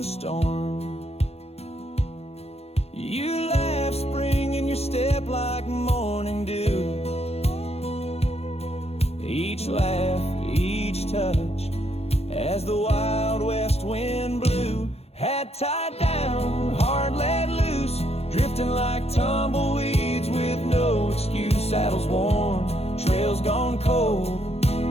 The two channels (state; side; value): late; right; 0.30 ms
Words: storm. You laughed spring in your step like morning dew. Each laugh, each touch, as the wild west wind blew, had tied down, heart let loose, drifting like tumbleweeds with no excuse. Saddles worn, trails gone cold,